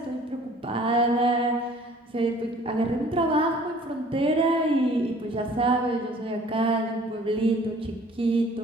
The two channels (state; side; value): normal; both; correlation 0.53